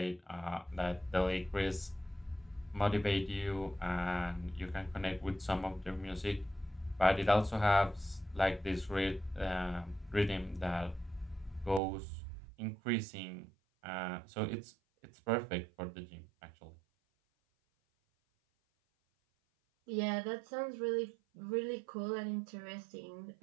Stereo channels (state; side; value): drops out; left; at 11.8 s